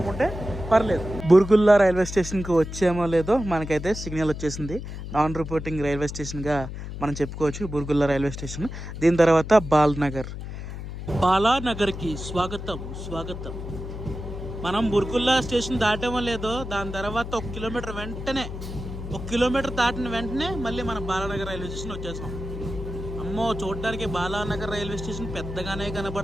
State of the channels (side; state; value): left; noise; hum, 8 dB below the sound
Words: పర్లేదు. బుర్గుల్లా రైల్వే స్టేషన్కి వచ్చామో లేదో మనకైతే సిగ్నల్ వచ్చేసింది. నాన్ రిపోర్టింగ్ రైల్వే స్టేషన్గా మనం చెప్పుకోవచ్చు బుర్గుల్లా రైల్వే స్టేషన్. దీని తర్వాత బాలానగర్కి స్వాగతం. మనం బుర్గుల్లా స్టేషన్ దాటామో లేదో దాని తర్వాత 1 కిలోమీటర్ దాటిన వెంటనే మళ్ళీ మనం బాలానగర్ రైల్వే స్టేషన్ వచ్చేసాం. అమ్మో, చూడడానికి బాలానగర్ రైల్వే స్టేషన్ పెద్దగానే